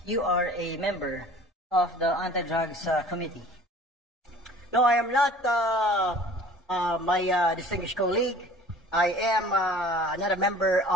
you are a member of the Anti-Drugs Committee. No, I am not, my distinguished colleague. I am not a member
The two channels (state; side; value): normal; both; correlation 0.47